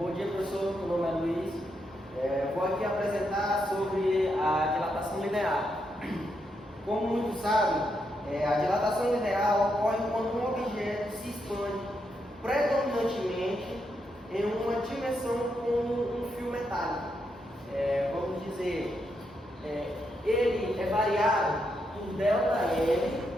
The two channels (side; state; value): both; normal; correlation 0.81